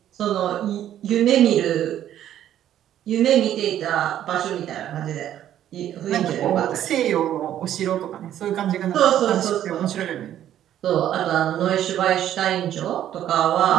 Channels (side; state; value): left; quieter; 11.4 dB